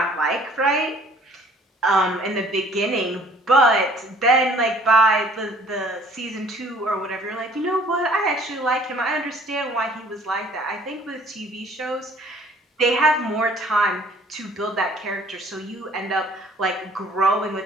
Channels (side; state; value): both; normal; correlation 0.55